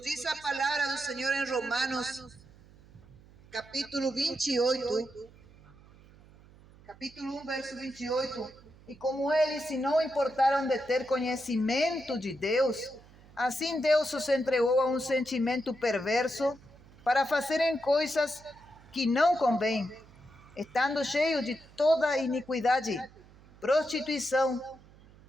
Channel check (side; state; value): right; noise; hum, 24 dB below the sound